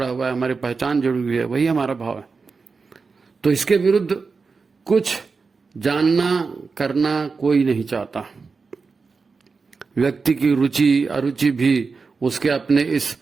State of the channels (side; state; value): left; quieter; 4.6 dB